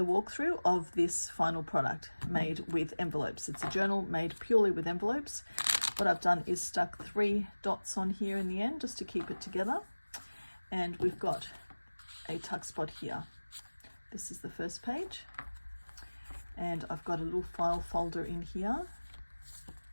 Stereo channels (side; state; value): both; inverted; correlation -1.00